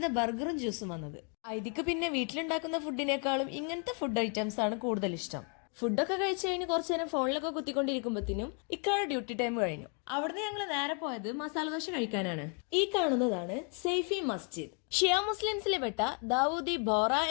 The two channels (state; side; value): quieter; right; 39.5 dB